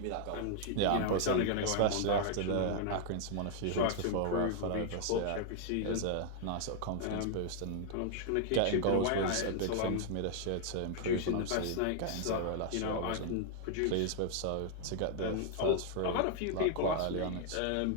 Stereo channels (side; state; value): both; different; correlation -0.01